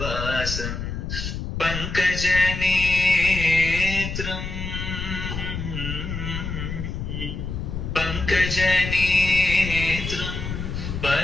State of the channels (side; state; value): left; noise; rumble, 5 dB below the sound